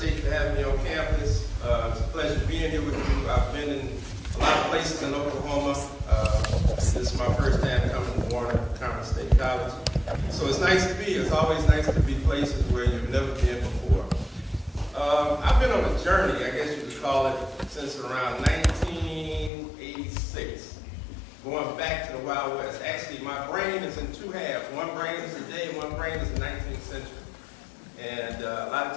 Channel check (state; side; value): drops out; right; at 19.5 s